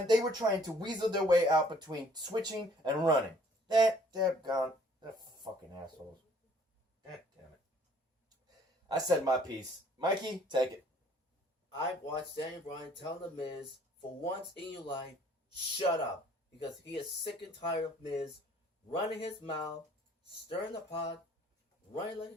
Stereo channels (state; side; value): normal; both; correlation 0.58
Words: they were trying to weasel their way out between switching and running. They're fucking assholes. God damn it. I said my piece. Mikey, take it. I watched Daniel Bryan tell The Miz, for once in your life, shut up. Because he is sick and tired of Miz running his mouth, stirring the pot, running like a